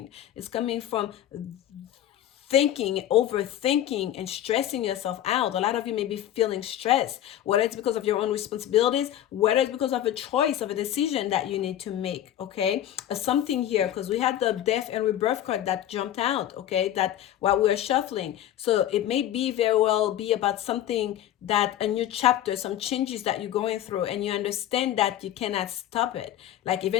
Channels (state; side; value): quieter; right; 11.9 dB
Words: It's coming from thinking, overthinking, and stressing yourself out. A lot of you may be feeling stressed, whether it's because of your own responsibilities, whether it's because of a choice, of a decision that you need to make, okay? Something here, because we had the death and rebirth card that jumped out, okay, that while we were shuffling. So it may be very well be about something, that a new chapter, some changes that you're going through, and you understand that you cannot stop it. Like